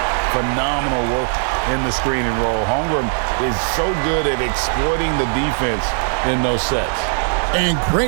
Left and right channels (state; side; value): silent; left; 56 dB below the other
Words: Phenomenal work in the screen and roll. Holmgren is so good at exploiting the defense in those sets. And